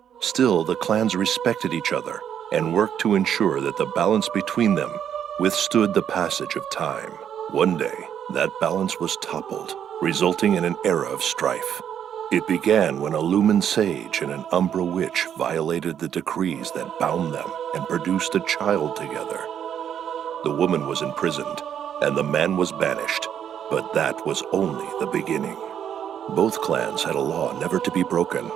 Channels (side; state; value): left; quieter; 9.1 dB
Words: Still, the clans respected each other and worked to ensure that the balance between them withstood the passage of time. One day, that balance was toppled, resulting in an era of strife. It began when a Lumen Sage and an Umbra Witch violated the decrees that bound them and produced a child together. The woman was imprisoned, and the man was banished, but that was only the beginning. Both clans had a law never to be broken